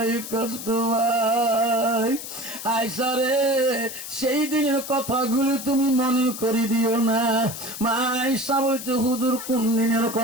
কষ্ট পাই। আয়েশা রে, সেই দিনের কথাগুলো তুমি মনে করি দিও না। মা আয়েশা বলছে, হুজুর কোন দিনের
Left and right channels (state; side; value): noise; left; hiss, 9 dB below the sound